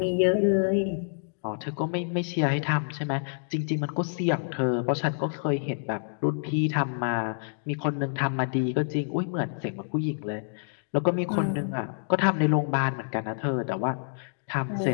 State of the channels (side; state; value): right; silent; digital silence